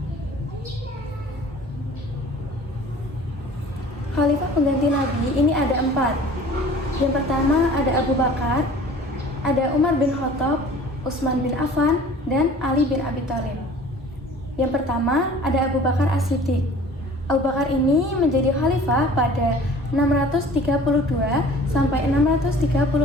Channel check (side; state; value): both; normal; correlation 0.47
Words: Khalifah pengganti Nabi ini ada 4. Yang pertama ada Abu Bakar, ada Umar bin Khattab, Utsman bin Affan, dan Ali bin Abi Thalib. Yang pertama ada Abu Bakar As-Siddiq. Abu Bakar ini menjadi khalifah pada 632 sampai